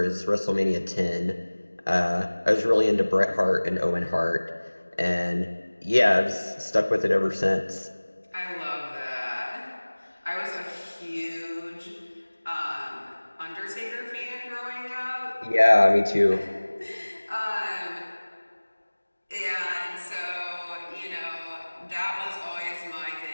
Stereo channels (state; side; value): inverted; both; correlation -1.00